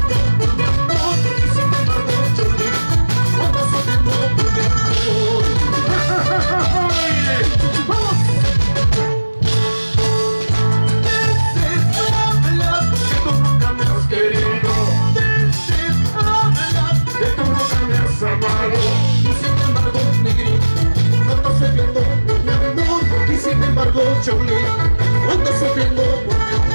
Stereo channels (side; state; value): both; inverted; correlation -1.00